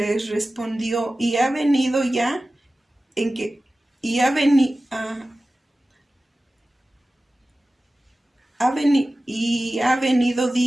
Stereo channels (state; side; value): normal; both; correlation 0.96